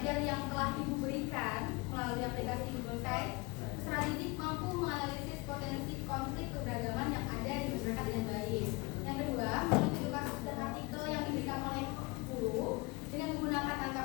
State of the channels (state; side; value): quieter; right; 25.7 dB